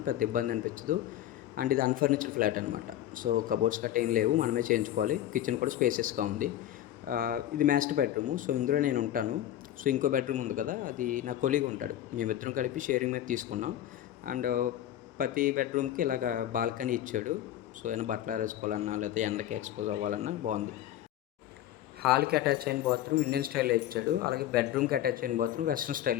పెద్ద ఇబ్బంది అనిపించదు. అండ్ ఇది అన్ఫర్నిచర్డ్ ఫ్లాట్ అనమాట. సో కబోర్డ్స్ గట్రా ఏం లేవు, మనమే చేయించుకోవాలి. కిచెన్ కూడా స్పేసియస్గా ఉంది. ఇది మాస్టర్ బెడ్రూము. సో ఇందులో నేను ఉంటాను. సో ఇంకో బెడ్రూమ్ ఉంది కదా, అది నా కొలీగ్ ఉంటాడు. మేమిద్దరం కలిపి షేరింగ్ మీద తీసుకున్నాం. అండ్ ప్రతి బెడ్రూమ్కి ఇలాగ బాల్కనీ ఇచ్చాడు. సో ఏమైనా బట్టలు ఆరేసుకోవాలన్నా లేకపోతే ఎండకి ఎక్స్పోజ్ అవ్వాలన్నా బాగుంది. హాల్కి అటాచ్ అయిన బాత్రూమ్ ఇండియన్ స్టైల్లో ఇచ్చాడు. అలాగే బెడ్రూమ్కి అటాచ్ అయిన బాత్రూమ్ వెస్ట్రన్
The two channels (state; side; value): quieter; right; 12.5 dB